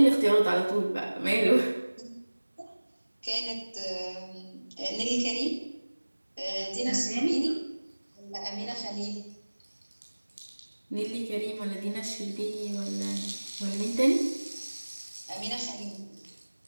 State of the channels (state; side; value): inverted; both; correlation -1.00